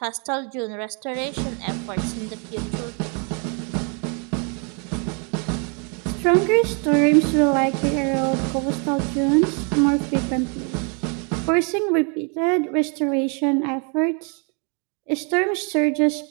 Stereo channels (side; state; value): left; quieter; 37.7 dB